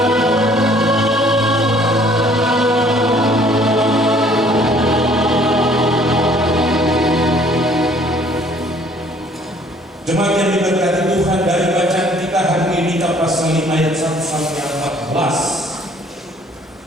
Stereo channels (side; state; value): both; normal; correlation 0.58